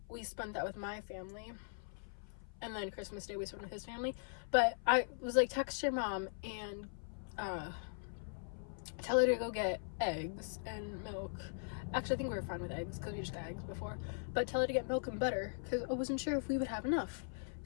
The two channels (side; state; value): right; silent; 51 dB below the other